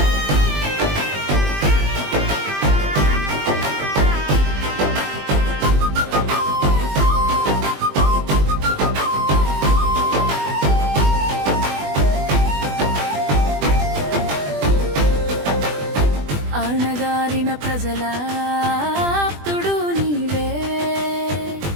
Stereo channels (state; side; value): late; left; 20 ms